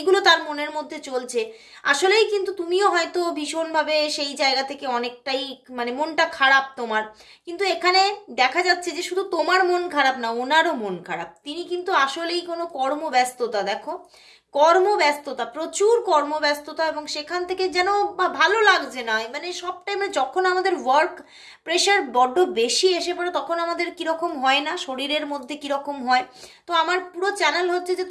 তার মনের মধ্যে চলছে। আসলেই কিন্তু তুমিও হয়তো ভীষণভাবে সেই জায়গা থেকে অনেকটাই মানে মনটা খারাপ তোমার। কিন্তু এখানে দেখা যাচ্ছে যে শুধু তোমার মন খারাপ না, ওনারও মন খারাপ। তিনি কিন্তু আসলেই কোনো কর্মব্যস্ততা, দেখো কর্মব্যস্ততা, প্রচুর কর্মব্যস্ততা, এবং সেখান থেকে যেন ভালো লাগছে না। মানে সব টাইমে যখন আমাদের ওয়ার্ক প্রেশার বড্ড বেশি এসে পড়ে তখন আমাদের কীরকম হয় না, শরীরের মধ্যে কীরকম হয়। তো আমার পুরো চ্যানেল হচ্ছে যে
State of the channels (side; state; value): both; identical; correlation 1.00